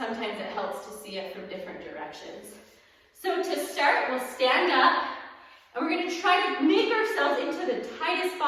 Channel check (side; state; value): both; identical; correlation 1.00